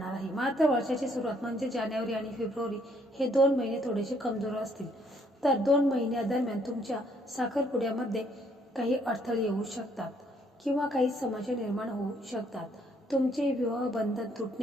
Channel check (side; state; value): both; normal; correlation 0.67